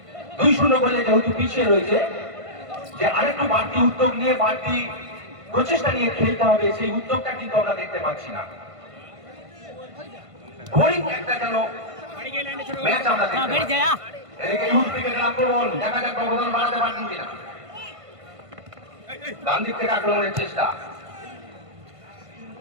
2-0 গোলে যেহেতু পিছিয়ে রয়েছে, যে আরেকটু বাড়তি উদ্যোগ নিয়ে, বাড়তি প্রচেষ্টা নিয়ে খেলতে হবে, সেই উদ্যোগটা কিন্তু আমরা দেখতে পাচ্ছি না। বোরিং একটা যেন ম্যাচ আমরা দেখতে পাচ্ছি। এদিকে ইউথ ক্রিকেটের আক্রমণ, দেখা যাক ব্যবধান বাড়াতে পারছেন কিনা। ডান দিক থেকে আক্রমণের চেষ্টা,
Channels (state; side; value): late; left; 1.5 ms